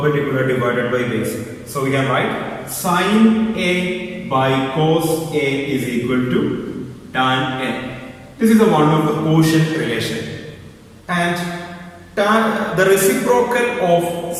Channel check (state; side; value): identical; both; correlation 1.00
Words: divided by base. So we can write sin A by cos A is equal to tan A. This is the one of the quotient relation. And the reciprocal of